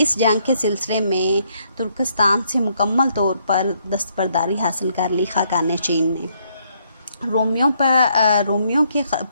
جنگ کے سلسلے میں ترکستان سے مکمل طور پر دستبرداری حاصل کر لی خاقان چین نے. رومیوں کے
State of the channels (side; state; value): both; inverted; correlation -0.71